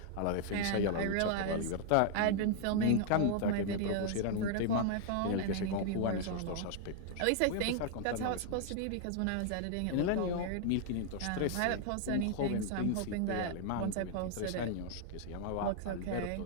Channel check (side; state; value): both; different; correlation 0.00